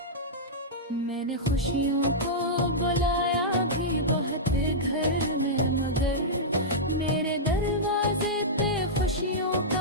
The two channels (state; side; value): normal; both; correlation -0.11